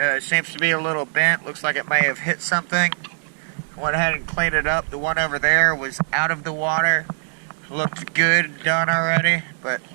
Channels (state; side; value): silent; left; 64 dB below the other